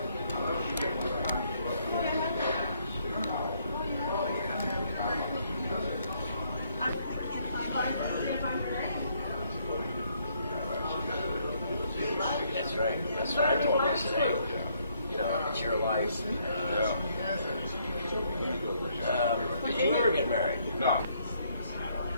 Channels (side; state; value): both; inverted; correlation -0.69